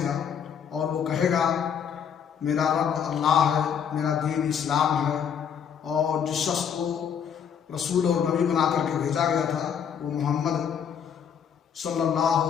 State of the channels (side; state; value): right; quieter; 7.8 dB